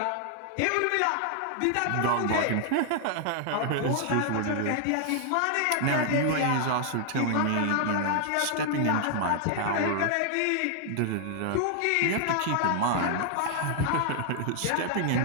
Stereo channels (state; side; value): different; both; correlation 0.00